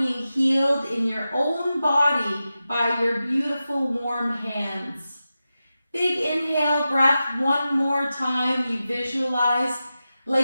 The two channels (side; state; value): both; inverted; correlation -0.92